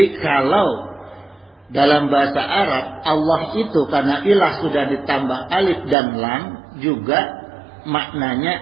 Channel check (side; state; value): left; drops out; at 6.0 s